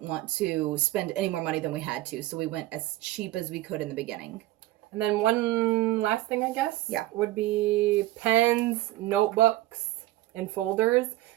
want to spend any more money than we had to, so we went as cheap as we could in the beginning. And then one last thing, I guess, yeah, would be pens, notebooks, and folders,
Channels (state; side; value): quieter; left; 16.4 dB